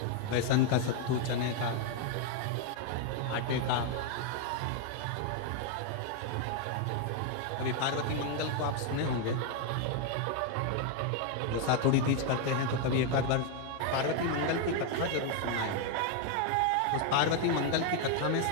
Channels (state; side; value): different; both; correlation 0.00